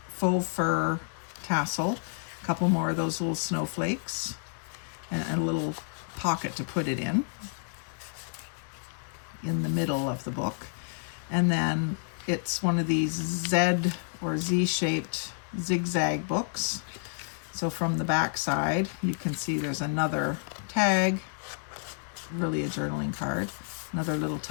faux fur tassel, a couple more of those little snowflakes, and a little pocket to put it in the middle of the book. And then it's one of these Z or Z-shaped zigzag books. So from the back side, you can see there's another tag, really a journaling card, another little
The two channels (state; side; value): silent; right; digital silence